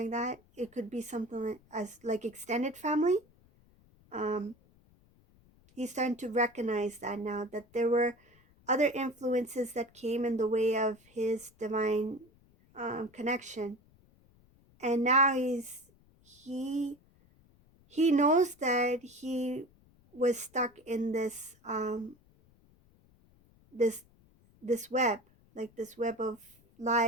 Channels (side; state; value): left; noise; rumble, 30 dB below the sound